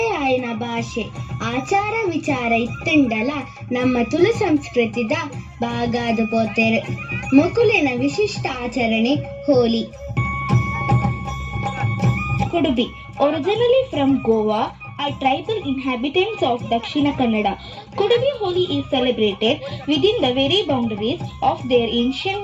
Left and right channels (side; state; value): both; identical; correlation 1.00